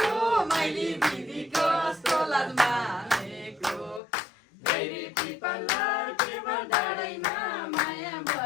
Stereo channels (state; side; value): drops out; right; at 4.0 s